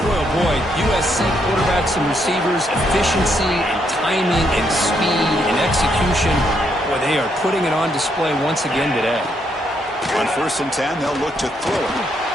boy, oh boy, USC quarterbacks and receivers, efficiency and timing and speed and execution. Boy, they are putting it on display once again today. On 1st and 10, they'll look to throw it.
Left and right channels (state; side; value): normal; both; correlation 0.75